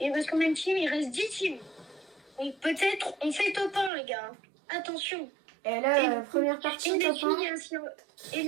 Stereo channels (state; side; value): drops out; left; at 3.9 s